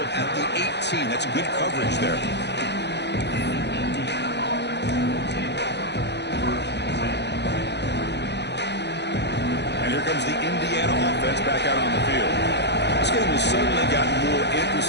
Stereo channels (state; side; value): late; right; 0.50 ms